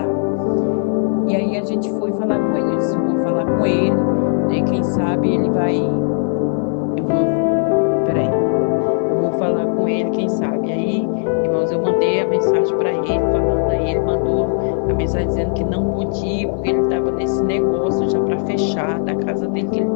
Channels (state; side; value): silent; right; 56 dB below the other